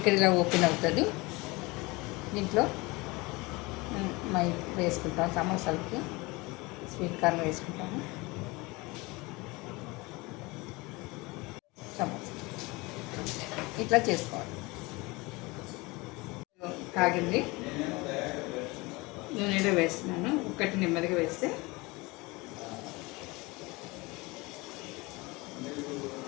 ఇక్కడ ఇలా ఓపెన్ అవుతుంది. దీంట్లో వేసుకుంటాం, సమోసాలకి స్వీట్ కార్న్ వేసుకుంటాము. సమోసా ఇట్లా చేసుకోవాలి. కాగింది, నూనెలో వేస్తున్నాను. ఒకటి నెమ్మదిగా వేస్తే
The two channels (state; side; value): quieter; right; 23.9 dB